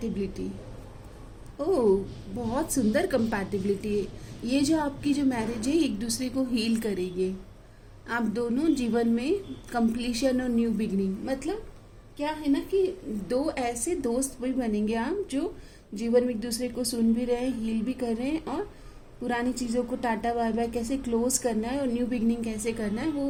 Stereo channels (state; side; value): identical; both; correlation 1.00